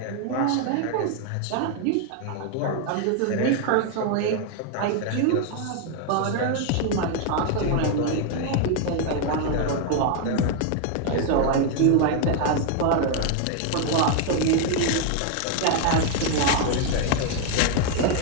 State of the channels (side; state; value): both; different; correlation 0.00